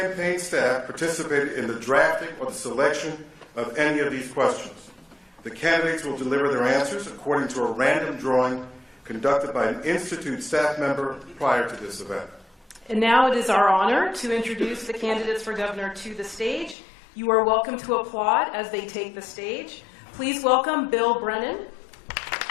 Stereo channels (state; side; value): drops out; right; at 16.8 s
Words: staff participated in the drafting or the selection of any of these questions. The candidates will deliver their answers according to a random drawing conducted by an Institute staff member prior to this event. And now it is our honor to introduce the candidates for governor to the stage. You are welcome to applaud as they take the stage. Please welcome Bill Brennan.